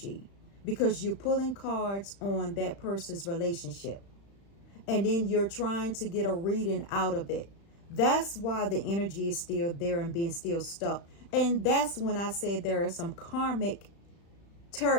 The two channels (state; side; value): late; right; 35 ms